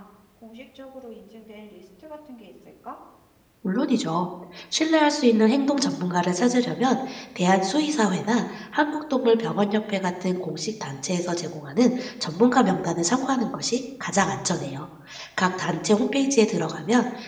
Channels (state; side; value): identical; both; correlation 1.00